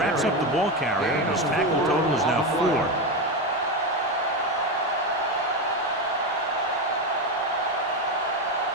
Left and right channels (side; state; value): both; normal; correlation 0.14